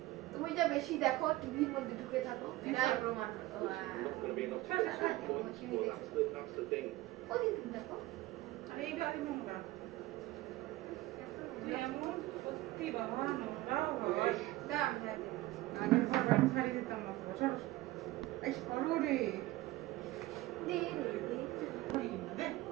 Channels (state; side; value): quieter; left; 17.9 dB